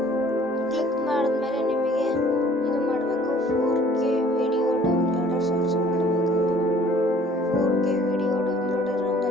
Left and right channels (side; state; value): both; normal; correlation 0.54